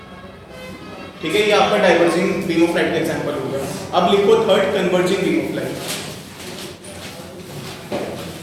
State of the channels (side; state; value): both; identical; correlation 1.00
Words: ठीक है, ये आपका डाइवर्जिंग बीम ऑफ लाइट का एग्जांपल हो गया। अब लिखो third converging beam of light.